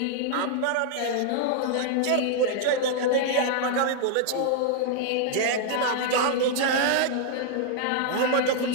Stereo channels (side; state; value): both; different; correlation -0.01